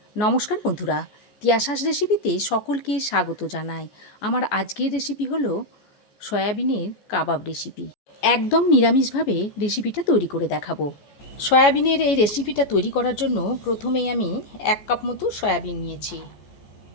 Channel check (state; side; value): late; right; 14 ms